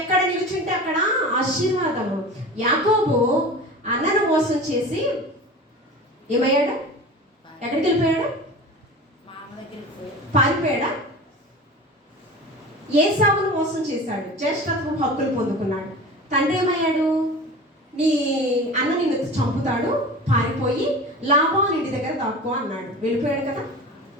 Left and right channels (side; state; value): both; normal; correlation 0.34